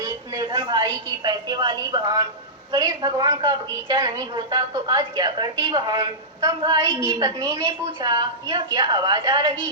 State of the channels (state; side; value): normal; both; correlation -0.15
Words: निर्धन भाई की पैसे वाली बहन, गणेश भगवान का बगीचा नहीं होता तो आज क्या करती बहन? तब भाई की पत्नी ने पूछा, यह क्या आवाज आ रही